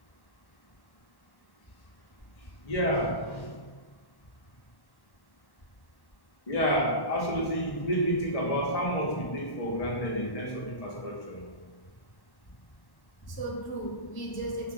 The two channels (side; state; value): right; late; 1.1 ms